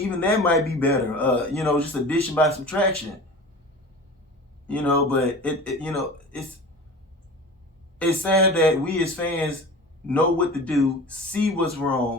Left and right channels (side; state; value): both; normal; correlation 0.36